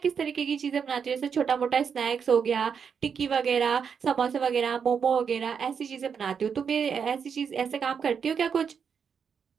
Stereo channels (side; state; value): left; quieter; 6.7 dB